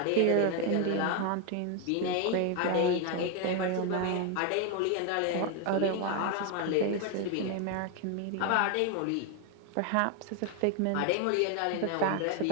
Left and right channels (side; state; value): both; different; correlation 0.01